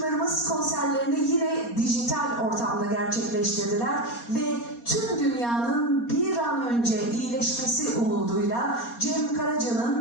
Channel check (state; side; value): late; right; 4.2 ms